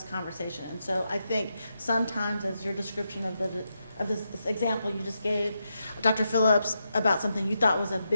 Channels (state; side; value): inverted; both; correlation -0.85